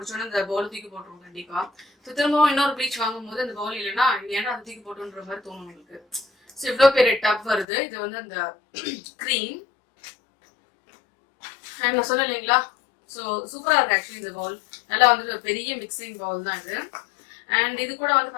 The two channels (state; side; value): drops out; right; at 7.7 s